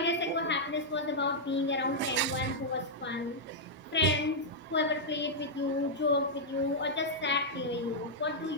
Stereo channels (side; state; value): both; normal; correlation -0.06